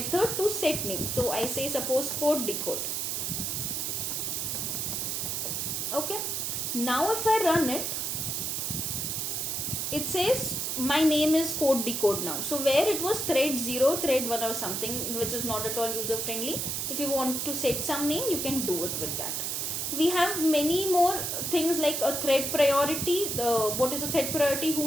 to set name. So I say suppose code decode. Okay, now if I run it, it says my name is code decode now. So where it was thread 0, thread 1 or something, which is not at all user friendly, if you want to set some name, you can do it with that. We have many more things like a thread priority. What is a thread priority?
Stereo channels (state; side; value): noise; right; hiss, 1 dB below the sound